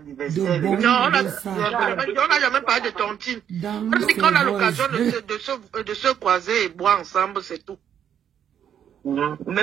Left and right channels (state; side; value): quieter; left; 9.1 dB